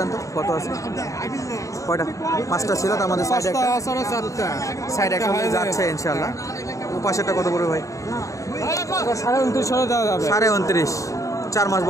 তো কত আছে? কয়টা? 5টা ছিল, তার মধ্যে সাইড একটা যাচ্ছে ইনশাল্লাহ। ও পাশেরটা কত পড়বে ভাই? 29,000 দেওয়া যাবে। 29.5। 4 মাস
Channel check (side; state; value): right; late; 0.16 ms